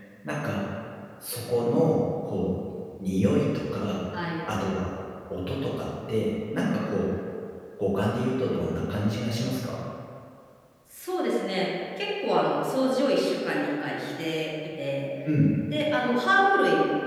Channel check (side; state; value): both; identical; correlation 1.00